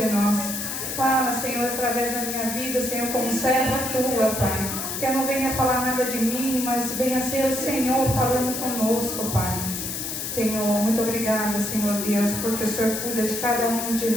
nós. Fala, Senhor, através da minha vida, Senhor, como serva tua, Pai. Que eu não venha falar nada de mim, mas venha ser o Senhor falando conosco, Pai. Senhor, muito obrigada, Senhor Deus, porque o Senhor cuida de cada um de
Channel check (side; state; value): left; noise; hiss, 4 dB below the sound